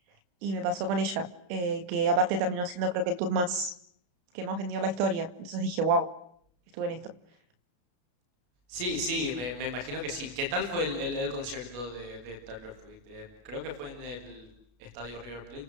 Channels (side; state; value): left; late; 33 ms